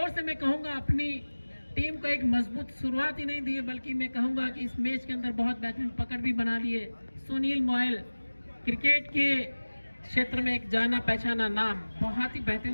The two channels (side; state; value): both; inverted; correlation -1.00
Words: से मैं कहूंगा अपनी टीम को एक मजबूत शुरुआत ही नहीं दी है, बल्कि मैं कहूंगा कि इस मैच के अंदर बहुत बेहतरीन पकड़ भी बना ली है। सुनील मोयल क्रिकेट के क्षेत्र में एक जाना पहचाना नाम, बहुत ही